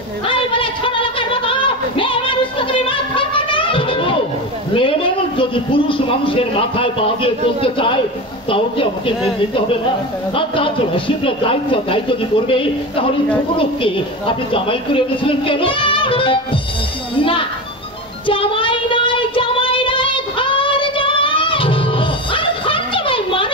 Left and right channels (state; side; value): normal; both; correlation 0.24